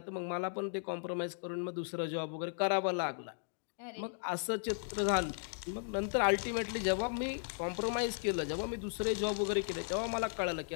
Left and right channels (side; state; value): right; silent; digital silence